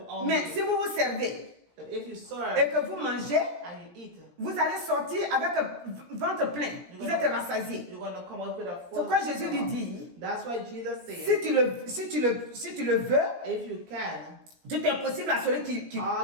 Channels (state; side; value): late; left; 17 ms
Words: Mais hungry. si vous vous servez But if you serve et que vous mangez, and you eat, vous allez sortir avec ventre plein. Vous êtes rassasié. you're gonna come out with a C'est full pourquoi Jésus lui stomach. dit, That's why Jesus said, si tu le veux, if you can, tout est possible à celui qui